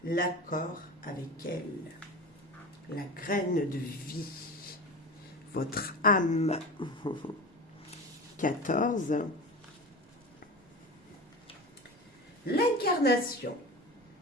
l'accord avec elle, la graine de vie, votre âme. 14. L'incarnation.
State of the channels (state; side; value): normal; both; correlation 0.30